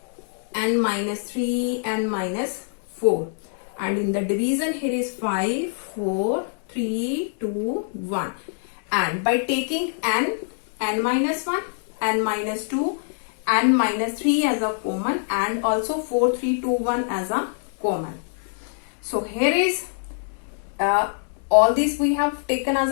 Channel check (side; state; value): right; silent; digital silence